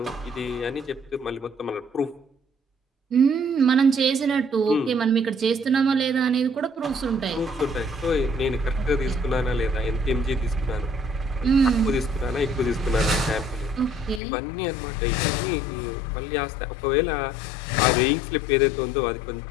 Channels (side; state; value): right; drops out; at 14.2 s